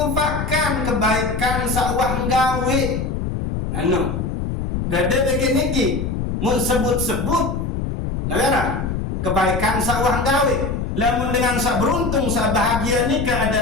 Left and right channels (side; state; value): left; noise; rumble, 3 dB below the sound